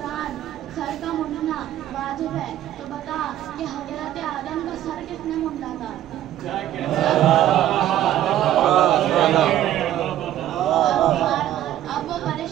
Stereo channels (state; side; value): quieter; left; 12.5 dB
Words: سر کا مونڈنا واجب ہے تو بتا کہ حضرت آدم کا سر کس نے مونڈا تھا؟ اب وہ